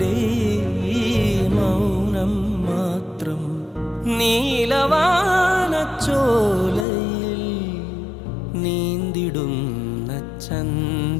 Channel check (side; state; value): right; drops out; at 6.9 s